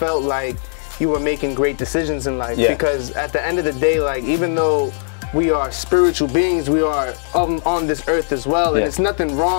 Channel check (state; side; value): silent; right; 67 dB below the other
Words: like you were making great decisions in life. Because at the end of the day, like, even though we are spiritual beings, we are on this earth as well, and it's nothing